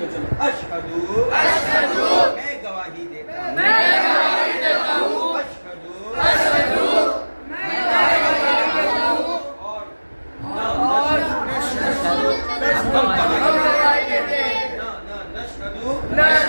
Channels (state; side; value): inverted; both; correlation -1.00